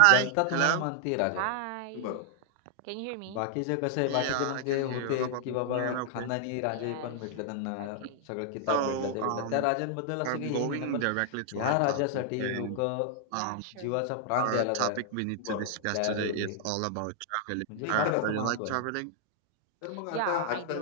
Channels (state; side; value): different; both; correlation 0.00